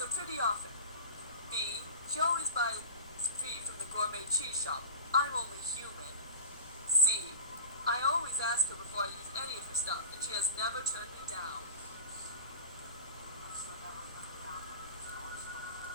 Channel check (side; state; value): both; inverted; correlation -0.35